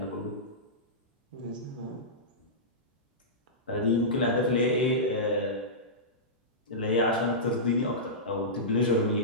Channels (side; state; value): both; normal; correlation -0.16